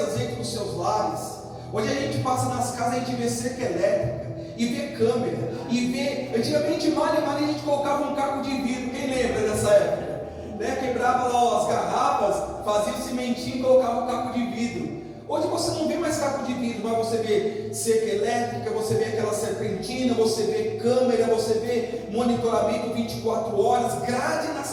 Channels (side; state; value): both; identical; correlation 1.00